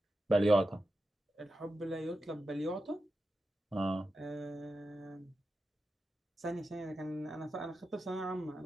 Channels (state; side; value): normal; both; correlation 0.90